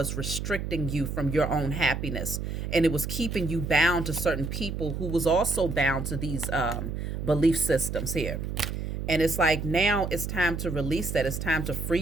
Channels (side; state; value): right; noise; hum, 4 dB below the sound